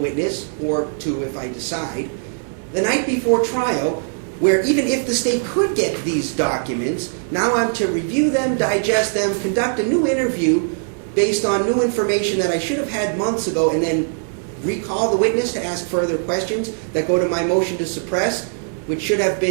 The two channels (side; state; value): left; silent; 65 dB below the other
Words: or 2 if I decide, the night before trial, where even if the state could get these documents, now I'm to review them, digest them, conduct a new interview based on new information that I should have had months ago, and then recall the witness to ask further questions that go to my motion to suppress, which should have